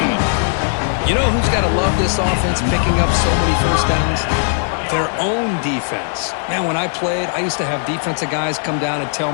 You know who's got to love this offense picking up so many first downs? Their own defense. Man, when I played, I used to have defensive guys come down and tell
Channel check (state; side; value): silent; right; 58 dB below the other